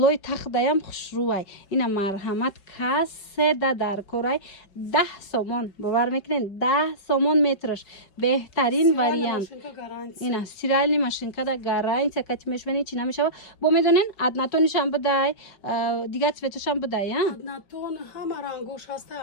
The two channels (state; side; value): late; right; 5.3 ms